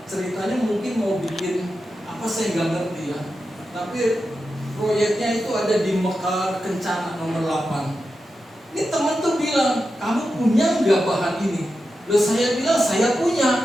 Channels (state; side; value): normal; both; correlation 0.90